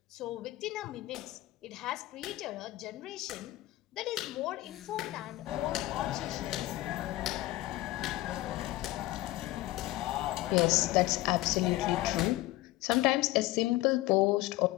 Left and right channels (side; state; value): right; quieter; 17.7 dB